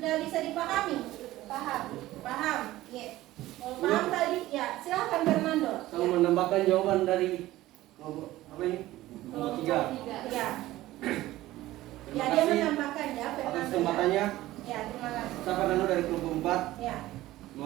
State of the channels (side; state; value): left; quieter; 16.3 dB